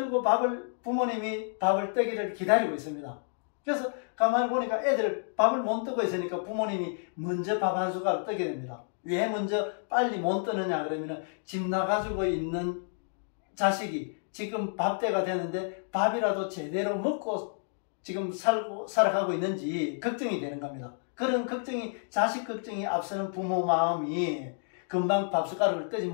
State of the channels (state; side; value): silent; right; digital silence